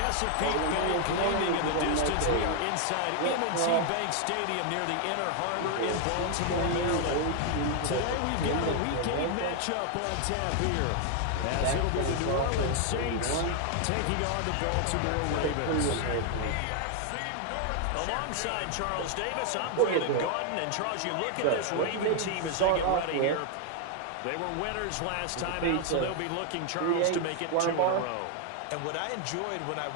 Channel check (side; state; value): both; different; correlation 0.00